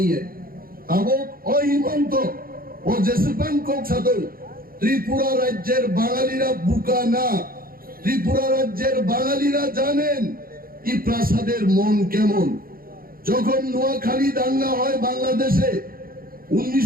है अब ओ हिमंत ओ जैसेपन कोक सादो त्रिपुरा राज्येर बांगालीरा बुका ना त्रिपुरा राज्येर बांगालीरा जानेन কি প্রাসাদের মন কেমন যখন নোয়াখালী দাঙ্গা হয় বাংলাদেশে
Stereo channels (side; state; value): left; late; 0.42 ms